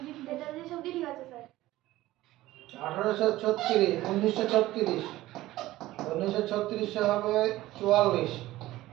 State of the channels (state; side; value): quieter; left; 16.5 dB